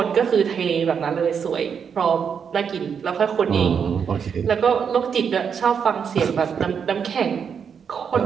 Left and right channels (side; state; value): left; quieter; 6.9 dB